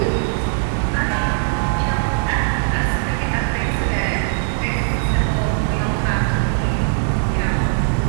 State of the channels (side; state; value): left; silent; digital silence